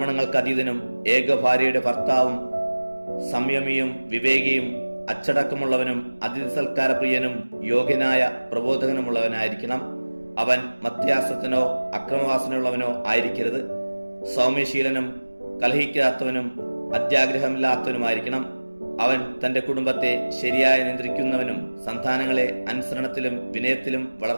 അതീതനും ഏകഭാര്യയുടെ ഭർത്താവും സംയമിയും വിവേകിയും അച്ചടക്കമുള്ളവനും അതിഥി സൽക്കാരപ്രിയനും യോഗ്യനായ പ്രബോധകനുമുള്ളവനായിരിക്കണം. അവൻ മധ്യാസത്തിനോ അക്രമവാസനയുള്ളവനോ ആയിരിക്കരുത്. സൗമ്യശീലനും കലഹിക്കാത്തവനും അത്യാഗ്രഹമില്ലാത്തവനുമായിരിക്കണം. അവൻ തന്റെ കുടുംബത്തെ ശരിയായി നിയന്ത്രിക്കുന്നവനും സന്താനങ്ങളെ അനുസരണത്തിലും വിനയത്തിലും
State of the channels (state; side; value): inverted; both; correlation -1.00